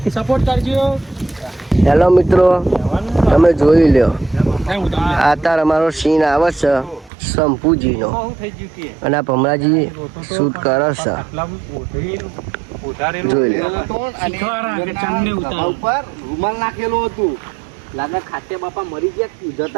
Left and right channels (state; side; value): drops out; left; at 7.1 s